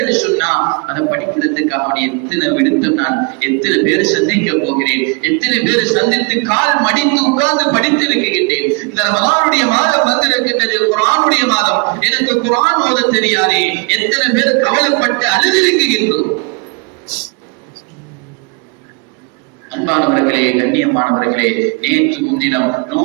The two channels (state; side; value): quieter; left; 32.2 dB